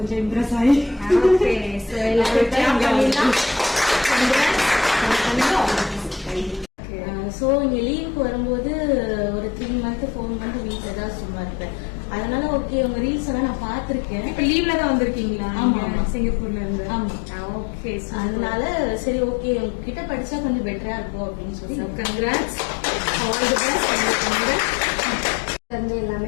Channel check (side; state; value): right; drops out; at 6.7 s